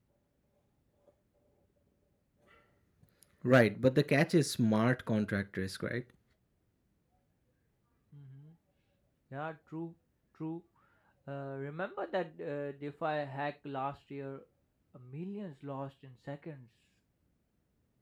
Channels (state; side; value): identical; both; correlation 1.00